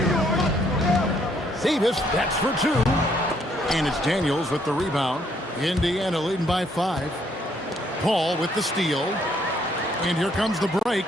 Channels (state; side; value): normal; both; correlation 0.68